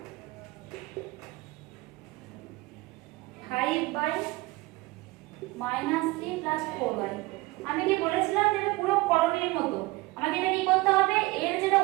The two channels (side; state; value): left; quieter; 21.5 dB